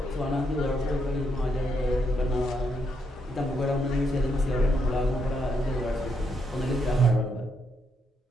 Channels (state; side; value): normal; both; correlation 0.78